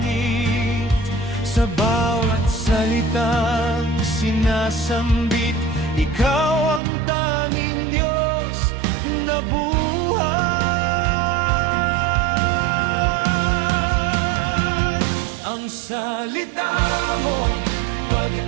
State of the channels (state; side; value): drops out; left; at 6.8 s